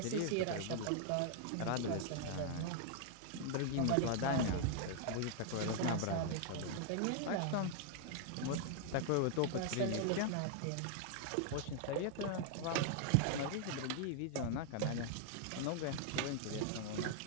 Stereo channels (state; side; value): different; both; correlation 0.00